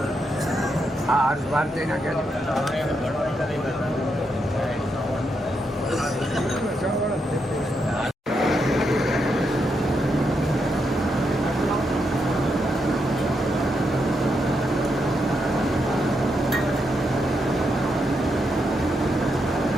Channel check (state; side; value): normal; both; correlation 0.81